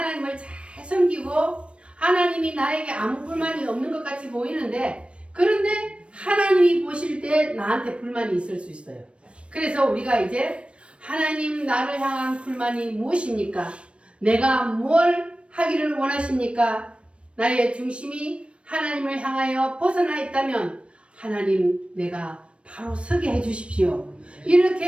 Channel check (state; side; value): late; left; 0.060 ms